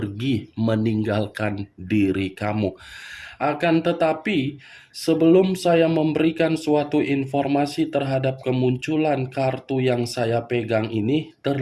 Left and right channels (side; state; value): both; identical; correlation 1.00